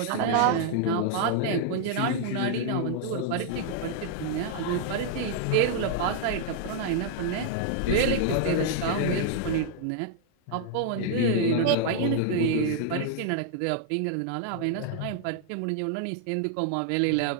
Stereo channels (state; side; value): different; both; correlation -0.01